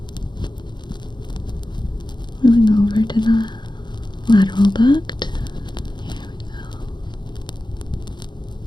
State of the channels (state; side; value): late; right; 0.22 ms